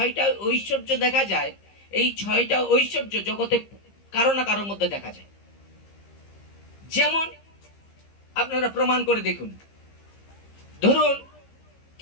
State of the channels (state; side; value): late; right; 15 ms